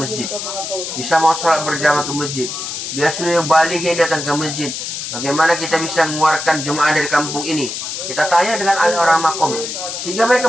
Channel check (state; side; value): noise; left; hiss, 6 dB below the sound